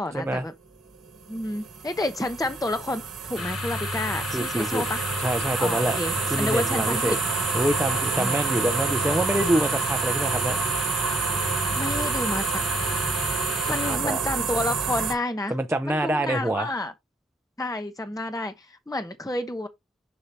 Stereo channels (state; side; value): normal; both; correlation 0.70